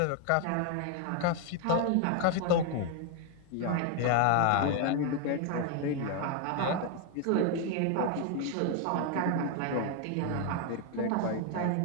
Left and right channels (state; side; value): different; both; correlation 0.01